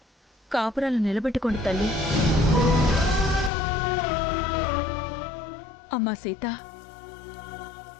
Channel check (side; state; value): right; drops out; at 3.5 s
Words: కాపురాలు నిలబెట్టుకోండి తల్లి. అమ్మా సీత,